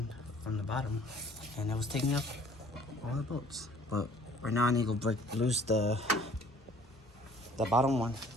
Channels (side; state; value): both; normal; correlation 0.55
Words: from the bottom and it was taking up all the bolts. But right now I need to break loose the bottom one